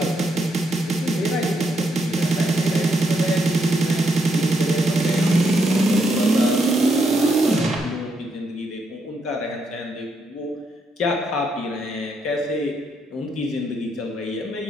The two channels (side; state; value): both; normal; correlation 0.77